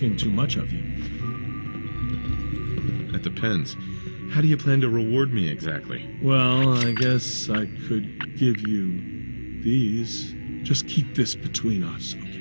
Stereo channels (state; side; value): inverted; both; correlation -1.00